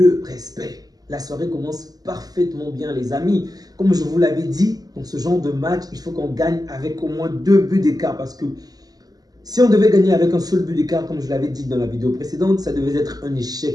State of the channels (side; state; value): left; late; 0.18 ms